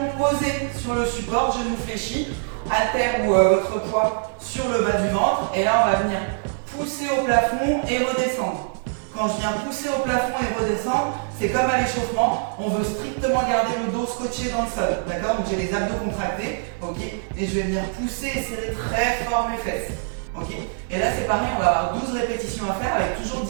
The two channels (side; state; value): left; silent; digital silence